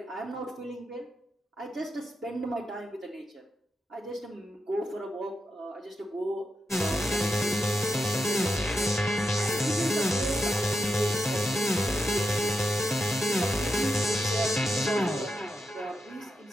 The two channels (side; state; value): both; normal; correlation 0.86